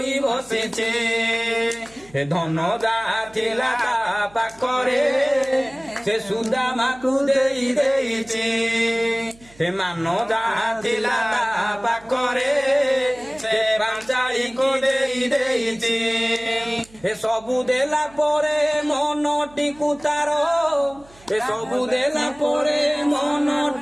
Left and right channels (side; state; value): right; noise; hum, 26 dB below the sound